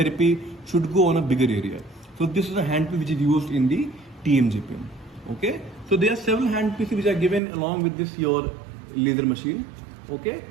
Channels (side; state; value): left; drops out; at 7.4 s